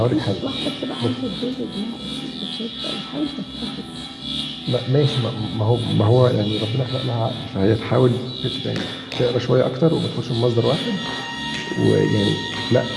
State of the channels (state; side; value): identical; both; correlation 1.00